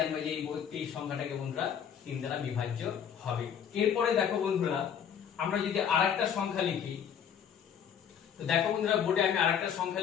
যে এই সংখ্যাটাকে বন্ধুরা 3 দ্বারা বিভাজ্য হবে। এরপরে দেখো বন্ধুরা, আমরা যদি আরেকটা সংখ্যা লিখি, তো দেখো বন্ধুরা বোর্ডে আমি আরেকটা সংখ্যা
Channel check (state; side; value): quieter; right; 8.3 dB